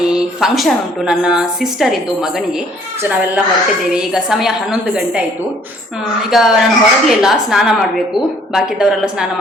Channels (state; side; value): normal; both; correlation 0.60